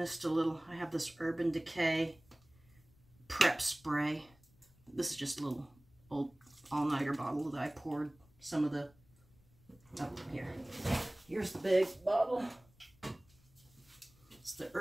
a little. I have this Urban Decay prep spray. This is just a little old all-nighter bottle that I poured some of the, oh, here. Here's the big bottle. It's the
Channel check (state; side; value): noise; left; rumble, 29 dB below the sound